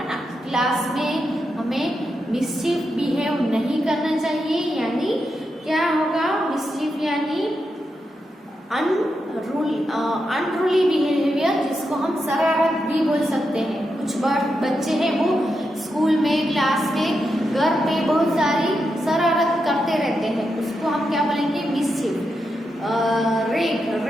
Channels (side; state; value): both; normal; correlation 0.86